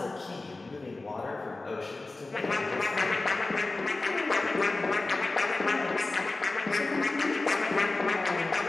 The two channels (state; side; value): quieter; right; 3.3 dB